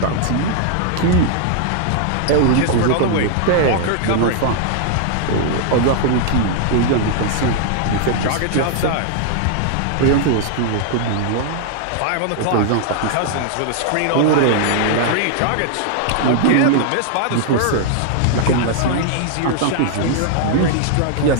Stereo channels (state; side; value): different; both; correlation 0.00